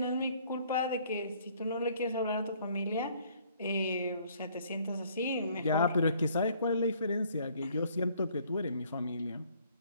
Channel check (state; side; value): inverted; both; correlation -0.61